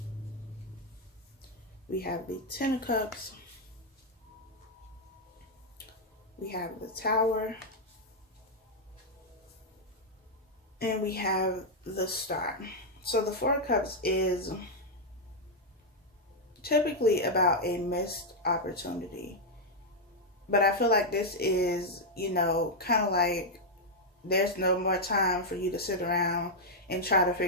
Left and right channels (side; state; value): both; normal; correlation -0.01